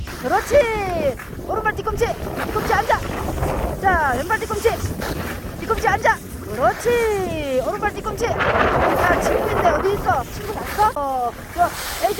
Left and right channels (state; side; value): identical; both; correlation 1.00